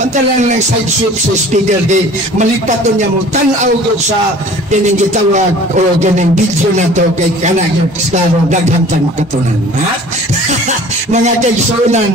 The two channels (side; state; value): both; normal; correlation 0.47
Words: ng side sweep sa speaker di malipat doon niya mo tanaw doon sa kining gitawag o kining video na to kay kanang klaro daghantang makatunan, ha? Mga